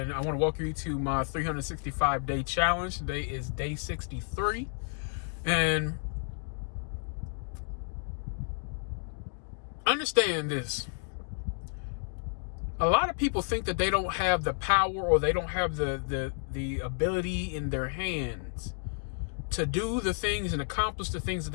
I want to welcome you to my 365-day challenge. Today is day 63, and understand this. A lot of people think that they don't have the power or they don't have the ability in their hands to do the things and accomplish the things that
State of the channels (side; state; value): right; silent; 57 dB below the other